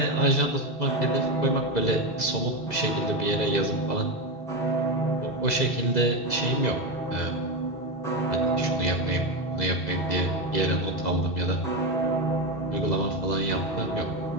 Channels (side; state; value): right; late; 2.0 ms